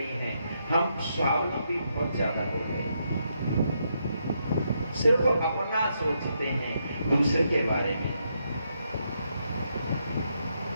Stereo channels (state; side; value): inverted; both; correlation -0.79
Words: हैं, हम स्वावलंबी बहुत ज्यादा हो गए, सिर्फ अपना सोचते हैं, दूसरे के बारे में।